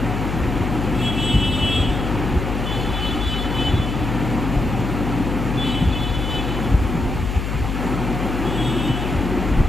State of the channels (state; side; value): noise; left; hum, 3 dB below the sound